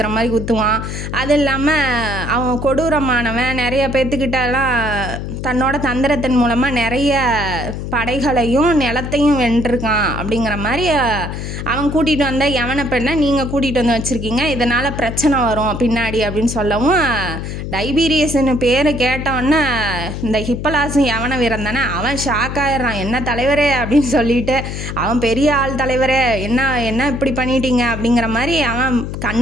மாதிரி குத்துவான். அது இல்லாமல் அவன் கொடூரமானவன். நிறைய பேர்த்துக்கிட்டலாம் தன்னோட தந்திரத்தின் மூலமாக நிறைய படைகளையும் நிலத்தையும் வென்றிருக்கான். அப்படிங்கிற மாதிரி அவன் கூட்டிகிட்டு வந்த யவன பெண்ணை நீங்கள் கூட்டிகிட்டு வந்து வச்சுருக்கீங்க, இதனால் பிரச்சனை வரும் பின்னாடி அப்படின்னு சொல்லவும், டைபீரியஸ்னு பேர் கேட்டவொன்னே இந்த ஹிப்பலாசும் யவன வீரன் தானே, அவன் ஷாக் ஆயிடுறான். என்ன தலைவரே அப்படின்னு சொல்லிட்டு, அவன் பெரிய ஆள் தலைவரே, என்ன இப்படி பண்ணிட்டீங்க அப்படிங்கிற மாதிரி அவன்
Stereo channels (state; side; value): noise; left; hum, 6 dB below the sound